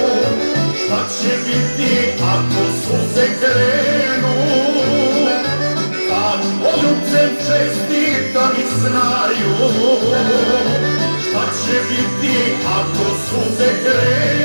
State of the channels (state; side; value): inverted; both; correlation -1.00